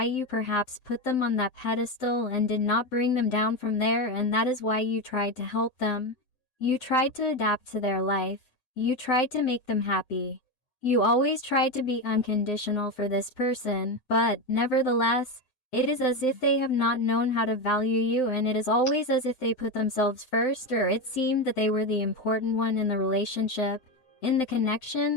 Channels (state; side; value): late; right; 7.8 ms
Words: you perhaps put them on that pedestal and did not bring them down from there, and that is why you tried to help them. You tried to adapt to their life. You tried to make them happy. You always tried to be unconditional for this person, but, nevertheless, it is as if they have not known how to value you, and it is always as if they put themselves first, or it seemed that they were the important one in the relationship, in the